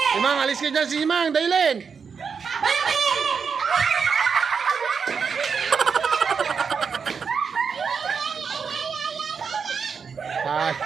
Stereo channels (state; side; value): quieter; left; 6.0 dB